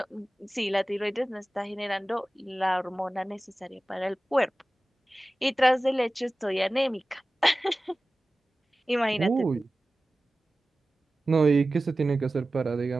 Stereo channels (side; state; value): both; normal; correlation 0.96